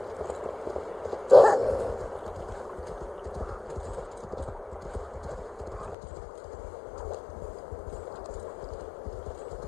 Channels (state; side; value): drops out; right; at 6.0 s